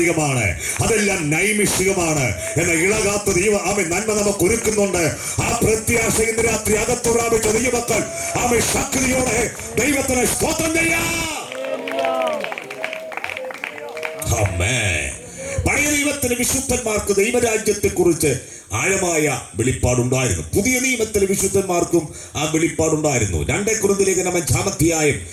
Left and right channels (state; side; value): identical; both; correlation 1.00